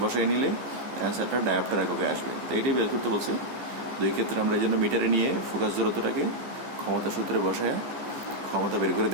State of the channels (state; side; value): late; left; 15 ms